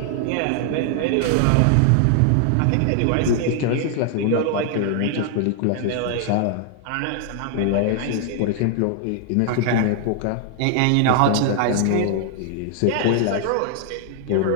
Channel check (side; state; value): both; different; correlation 0.00